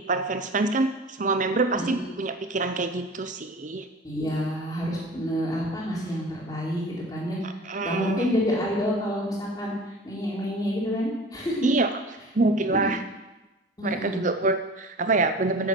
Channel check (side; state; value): both; normal; correlation 0.40